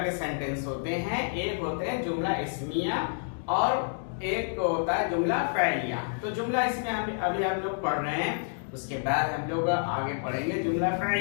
के सेंटेंस होते हैं, एक होते हैं जुमला इस्मिया और एक होता है जुमला फ़इलिया। तो जुमला इस्मिया अभी हम लोग पढ़ रहे हैं, उसके बाद हम लोग आगे पढ़ेंगे जुमला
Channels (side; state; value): right; silent; digital silence